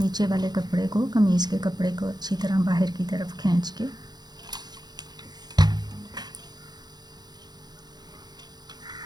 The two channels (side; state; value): left; late; 0.20 ms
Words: वाले कपड़े को, कमीज़ के कपड़े को अच्छी तरह बाहर की तरफ खींच के।